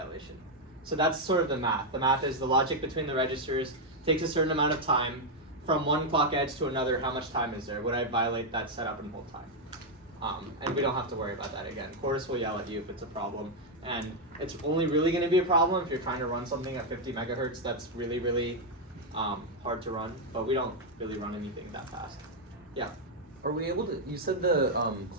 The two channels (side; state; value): both; normal; correlation 0.00